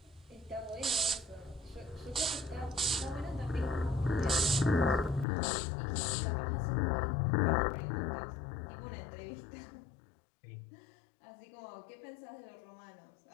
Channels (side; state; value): right; drops out; at 5.2 s